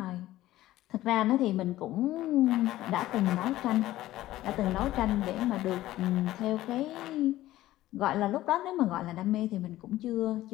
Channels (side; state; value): right; quieter; 15.3 dB